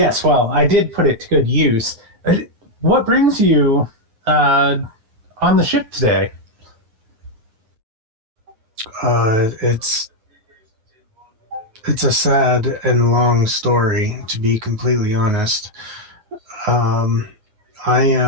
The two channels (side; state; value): left; late; 9.3 ms